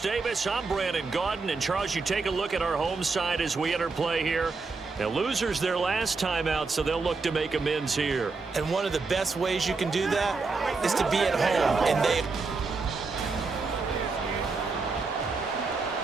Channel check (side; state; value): left; quieter; 4.2 dB